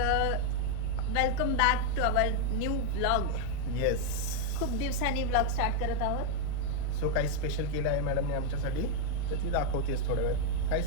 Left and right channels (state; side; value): different; both; correlation 0.00